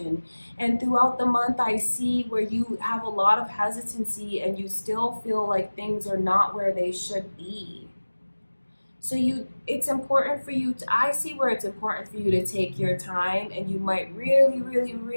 And throughout the month, I see where you have a lot of hesitancy and you still feel like things are not where they should be. So it's important for you to, I see where it's important for you to take your time, and you might really, really,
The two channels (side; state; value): both; inverted; correlation -1.00